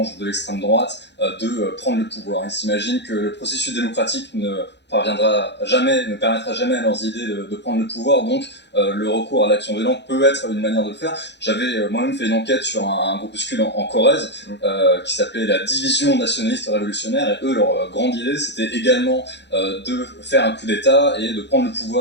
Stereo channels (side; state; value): right; late; 0.50 ms